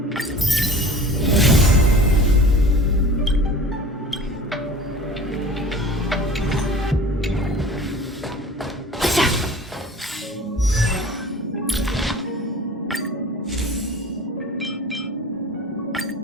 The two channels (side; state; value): both; normal; correlation 0.42